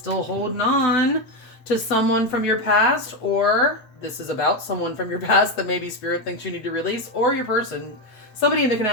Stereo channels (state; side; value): late; right; 8.0 ms